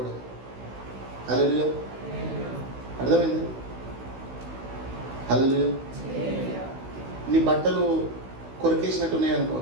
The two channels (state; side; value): late; left; 16 ms